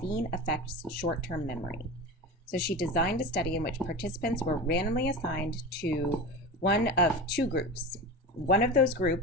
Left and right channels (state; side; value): normal; both; correlation 0.28